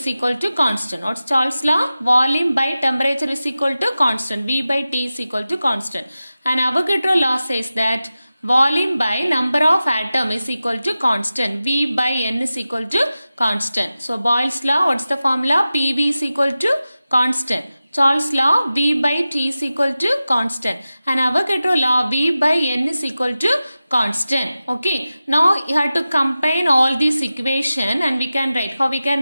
equal to constant. What's Charles' law? Volume by temperature is equal to constant. V by T is equal to constant. And Avogadro law says that volume by number of atom is equal to constant. V by N is equal to constant. So Boyle's law, what's the formula? PV is equal to constant. Charles' law, V by T is equal to constant. And Avogadro law, V by N is equal to constant. Okay. Now you have to combine all these equation and we can write. How we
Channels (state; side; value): inverted; both; correlation -0.95